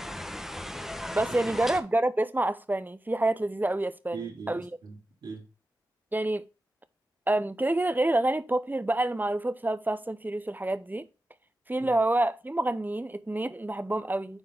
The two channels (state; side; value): normal; both; correlation 0.92